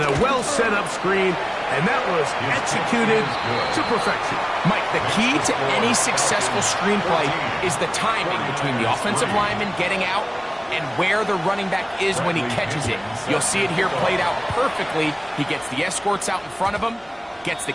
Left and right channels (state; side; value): identical; both; correlation 1.00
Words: a well-set-up screen, and that was executed to perfection. Mike, the key to any successful screenplay is the timing between the offensive lineman getting out and where the running back is when he catches it. You'll see it here played out perfectly. He gets the escorts out in front of him, gets the